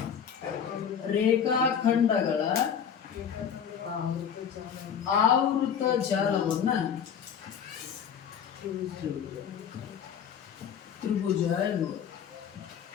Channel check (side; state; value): right; quieter; 7.9 dB